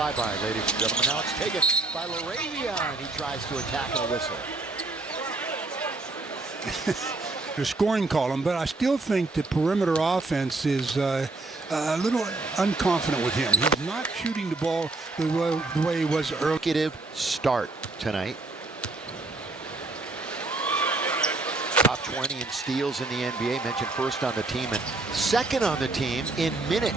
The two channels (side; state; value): left; quieter; 3.3 dB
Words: ladies and gentlemen. Now it's taken by Laravion. He tries to attack a whistle. The scoring column, but I still think the perimeter offense is a little unconfident with him. He's not shooting the ball the way he was earlier. Consecutive start tonight. Top 20 in steals in the NBA, mentioned first on the team and second on the team in